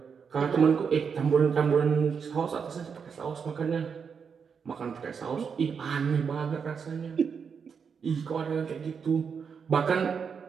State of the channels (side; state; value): left; quieter; 6.3 dB